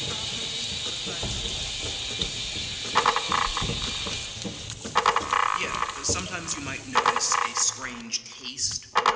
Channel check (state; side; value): identical; both; correlation 1.00